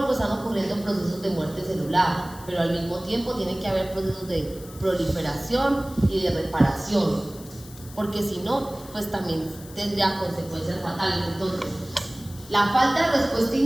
están ocurriendo procesos de muerte celular, pero al mismo tiempo tiene que haber procesos de proliferación y de reparación, porque si no, pues también tendría consecuencias fatales. Entonces, la falta de respuesta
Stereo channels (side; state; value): left; noise; hiss, 19 dB below the sound